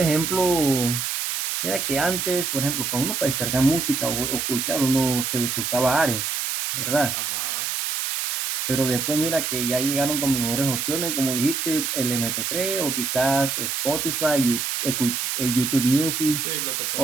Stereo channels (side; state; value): right; noise; hiss, 1 dB below the sound